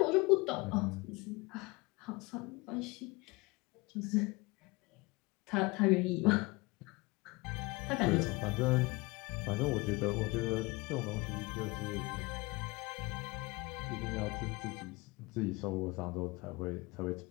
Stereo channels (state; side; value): quieter; right; 24.6 dB